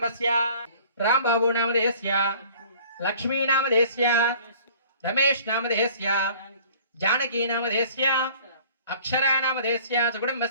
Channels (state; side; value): inverted; both; correlation -0.50